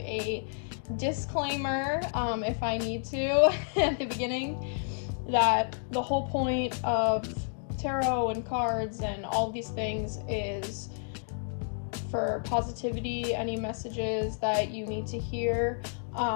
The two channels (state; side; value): silent; right; digital silence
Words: disclaimer, if I need to, at the beginning, that the whole point of tarot and cards and all these things is for positivity, any messages that you need to hear,